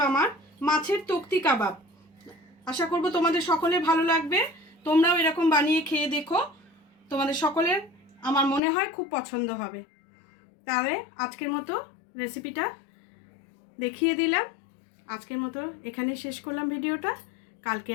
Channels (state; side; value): drops out; right; at 8.6 s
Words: আমার মাছের তক্তি কাবাব। আশা করব তোমাদের সকলের ভালো লাগবে। তোমরাও এরকম বানিয়ে খেয়ে দেখো, তোমাদের সকলের আমার মনে হয় খুব পছন্দ হবে। তাহলে আজকের মতো রেসিপিটা দেখিয়ে দিলাম। আজকের মতো এখানেই শেষ করলাম ভিডিওটা। কালকে